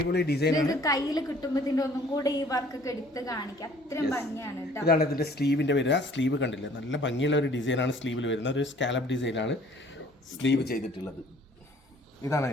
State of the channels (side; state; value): both; normal; correlation 0.55